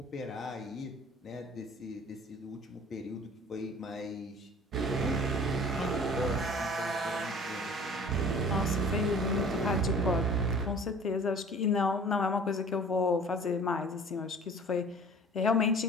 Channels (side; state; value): both; normal; correlation 0.47